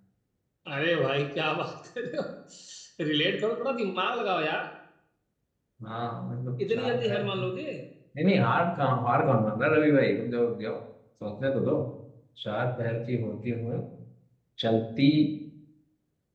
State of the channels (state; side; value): identical; both; correlation 1.00